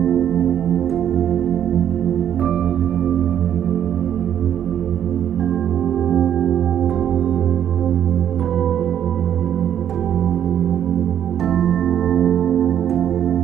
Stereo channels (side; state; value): left; quieter; 9.9 dB